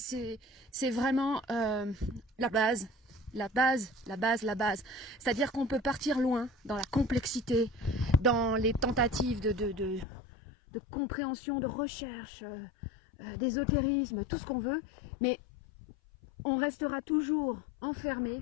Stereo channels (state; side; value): drops out; right; at 10.1 s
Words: vraiment la base. La base. C'est-à-dire qu'on peut partir loin dans la complexité, dans les tentatives de compréhension, de recherche, d'ésotérisme, tout ce qu'on veut, mais on restera toujours enfermé